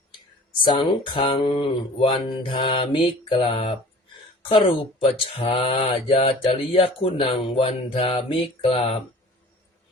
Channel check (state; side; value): normal; both; correlation 0.46